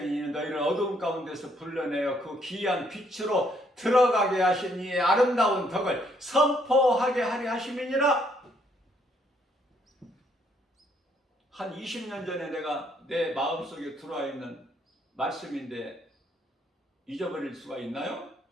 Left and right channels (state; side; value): normal; both; correlation 0.69